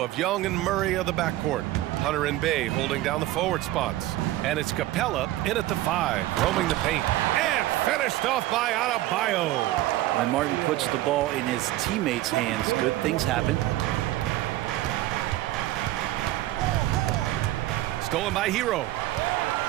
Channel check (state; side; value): quieter; left; 15.9 dB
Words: of Young and Murray of the backcourt. Hunter and Bay holding down the forward spots. And it's Capella in at the 5, roaming the paint. And finished off by Adebayo. When Martin puts the ball in his teammates' hands, good things happen. Stolen by Hero.